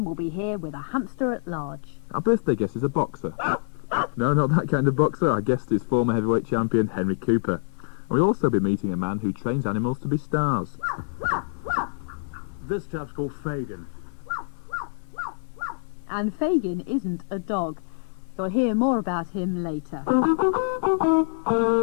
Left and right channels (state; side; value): silent; right; digital silence